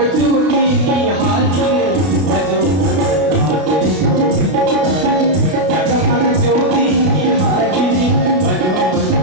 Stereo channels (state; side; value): late; left; 32 ms